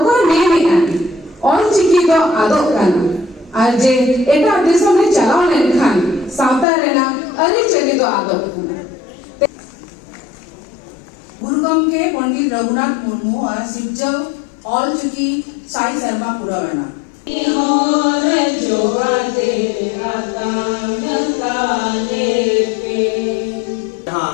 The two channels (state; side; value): drops out; right; at 6.7 s